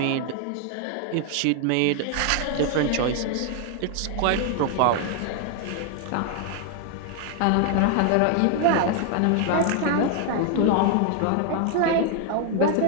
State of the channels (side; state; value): both; different; correlation 0.00